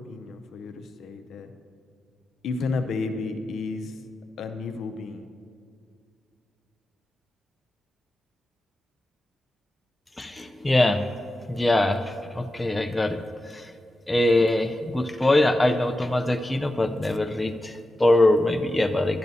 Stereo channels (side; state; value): both; normal; correlation 0.91